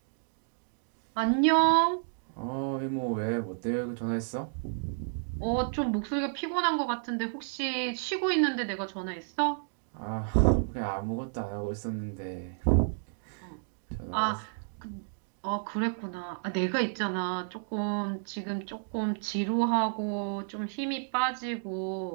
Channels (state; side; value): silent; left; digital silence